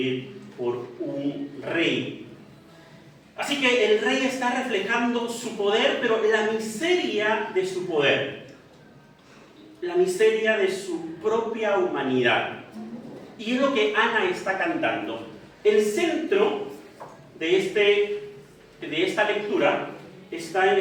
por un rey. Así que el rey está reflejando su poder, pero la miseria de su poder, la miseria de su propia humanidad. Y es lo que Ana está cantando. El centro de esta lectura está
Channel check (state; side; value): identical; both; correlation 1.00